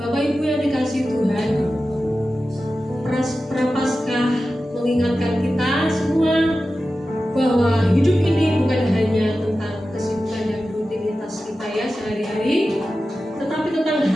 Ibu yang dikasih Tuhan, Prapaskah mengingatkan kita semua bahwa hidup ini bukan hanya tentang kesibukan dan rutinitas kita ya sehari-hari, tetapi tentang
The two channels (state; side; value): normal; both; correlation 0.93